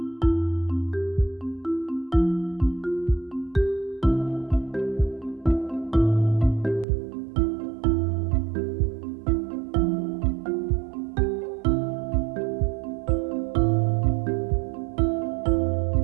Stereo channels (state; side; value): drops out; left; at 6.9 s